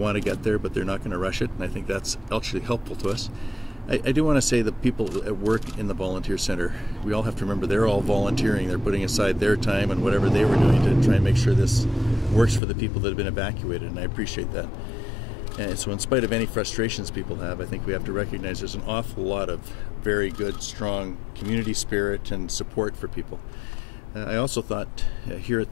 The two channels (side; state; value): right; drops out; at 12.6 s